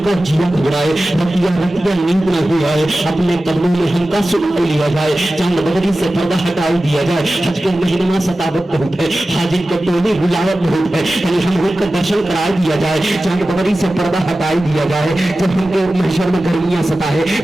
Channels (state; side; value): normal; both; correlation 0.95